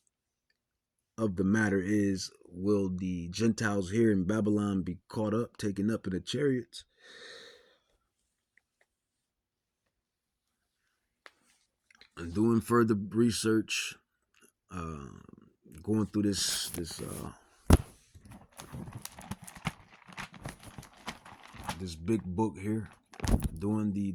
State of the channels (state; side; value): identical; both; correlation 1.00